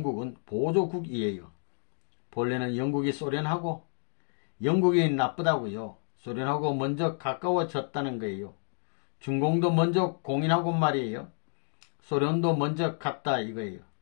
보조국이에요. 본래는 영국이 소련하고 영국이 나쁘다고요. 소련하고 먼저 가까워졌다는 거예요. 중공도 먼저 공인하고 말이에요. 소련도 먼저 갔다 이거예요.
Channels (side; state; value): right; silent; 58 dB below the other